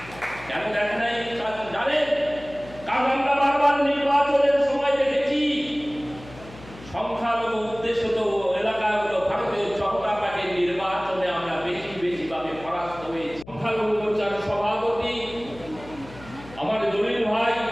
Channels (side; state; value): left; noise; hum, 18 dB below the sound